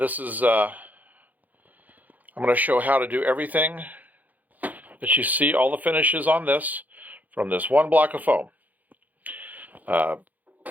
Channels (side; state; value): left; late; 0.081 ms